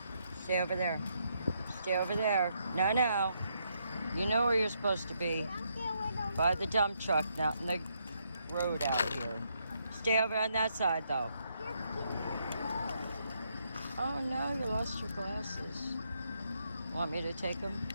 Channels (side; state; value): both; inverted; correlation -0.77